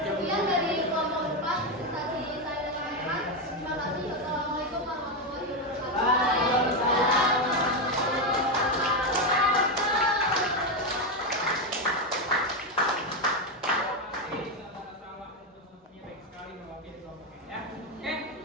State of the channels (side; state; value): both; normal; correlation 0.08